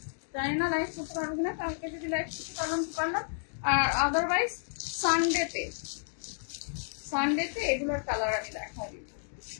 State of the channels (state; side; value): silent; right; digital silence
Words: জানি না লাইভ করতে পারবো কিনা, কালকে যদি লাইভ করতে পারলাম, আর আদারওয়াইজ সানডেতে এগুলোর কালার আমি দেখাই দিব।